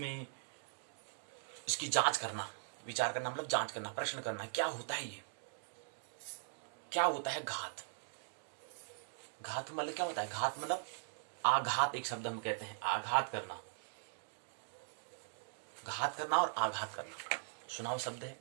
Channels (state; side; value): silent; left; digital silence